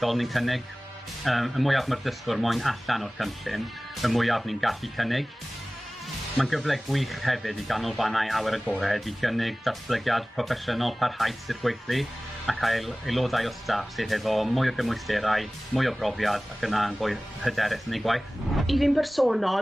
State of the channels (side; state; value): both; normal; correlation 0.98